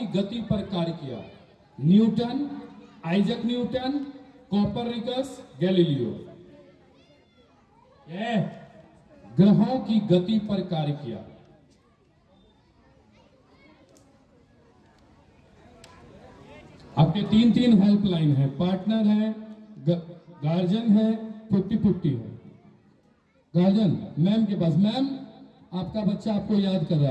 गति पर कार्य किया? Newton, Isaac Newton, Copernicus, Galileo? ग्रहों की गति पर कार्य किया। आपके 3 हेल्पलाइन है, पार्टनर है, गार्जियन है, 50-50 है। गार्जियन मैम के पास। मैम, आपका बच्चा आपको याद कर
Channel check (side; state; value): both; identical; correlation 1.00